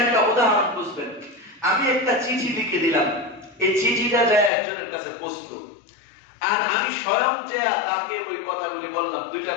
একটা উদাহরণ বুঝবেন। আমি একটা চিঠি লিখে দিলাম, এই চিঠিটা যায় একজনের কাছে পৌঁছলো, আর আমি স্বয়ং যে তাকে ওই কথাগুলি বললাম,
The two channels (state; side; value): drops out; right; at 4.5 s